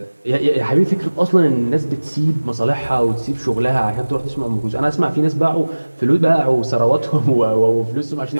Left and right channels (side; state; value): both; inverted; correlation -1.00